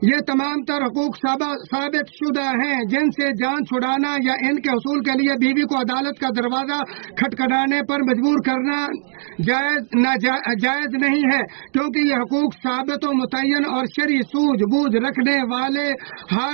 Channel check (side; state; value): left; silent; digital silence